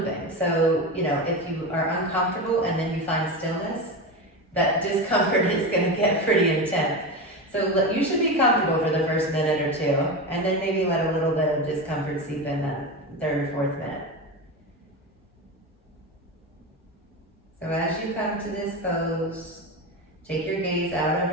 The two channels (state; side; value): normal; both; correlation 0.21